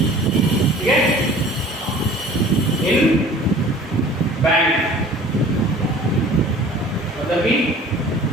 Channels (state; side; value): normal; both; correlation 0.46